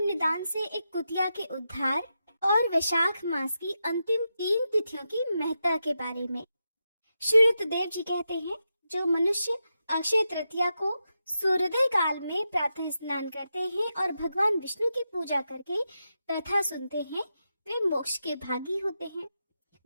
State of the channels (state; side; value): inverted; both; correlation -0.87